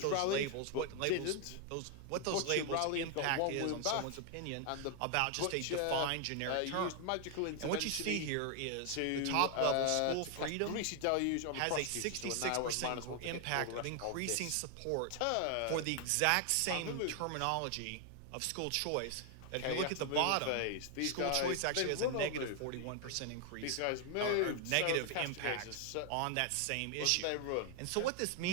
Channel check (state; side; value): different; both; correlation 0.00